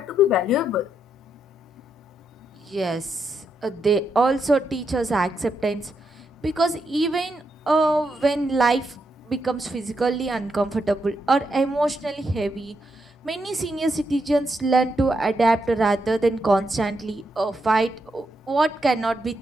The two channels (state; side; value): normal; both; correlation 0.81